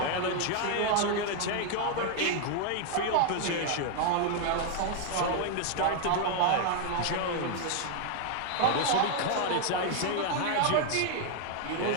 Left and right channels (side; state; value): both; different; correlation 0.00